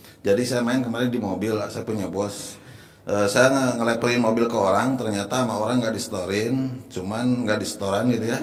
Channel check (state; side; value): identical; both; correlation 1.00